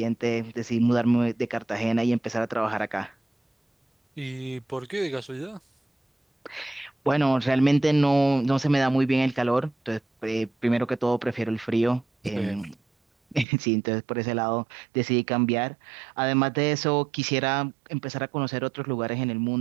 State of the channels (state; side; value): drops out; left; at 13.5 s